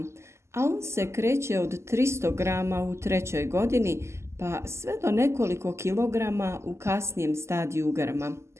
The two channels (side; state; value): left; late; 0.13 ms